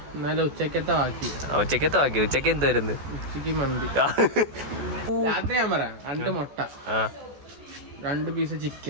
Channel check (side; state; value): left; late; 14 ms